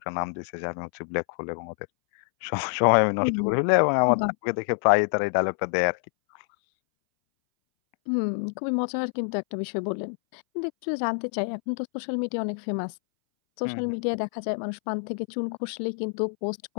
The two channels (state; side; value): silent; right; 60 dB below the other